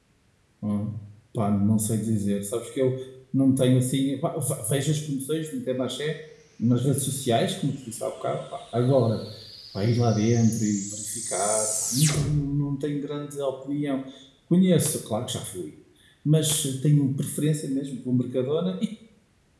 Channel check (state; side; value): identical; both; correlation 1.00